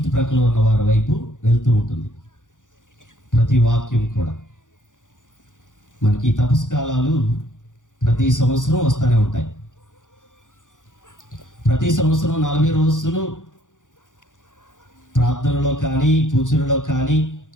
ఉన్న వారి వైపు వెళ్తూ ఉంటుంది. ప్రతి వాక్యం కూడా మనకి తపస్కాలాలు ప్రతి సంవత్సరం వస్తూనే ఉంటాయి. ప్రతి సంవత్సరం 40 రోజులు ప్రార్థనలో కానీ, పూజలలో కానీ,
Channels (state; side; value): late; right; 0.87 ms